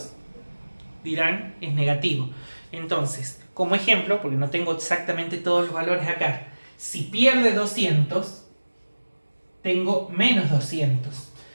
dirán es negativo. Entonces, como ejemplo, porque no tengo exactamente todos los valores acá, si pierde 200, tengo menos 200.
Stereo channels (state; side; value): inverted; both; correlation -1.00